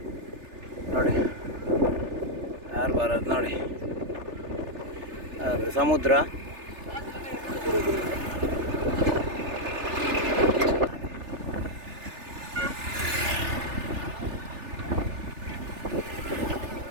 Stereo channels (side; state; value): left; late; 3.4 ms